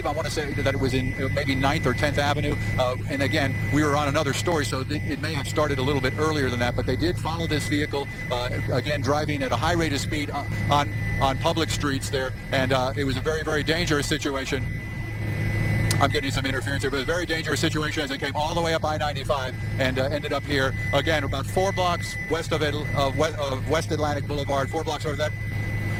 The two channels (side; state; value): both; identical; correlation 1.00